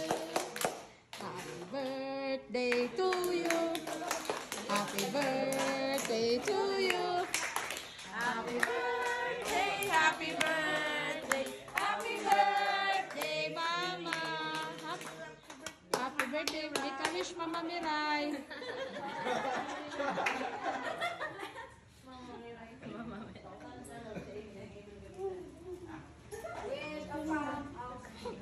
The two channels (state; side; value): identical; both; correlation 1.00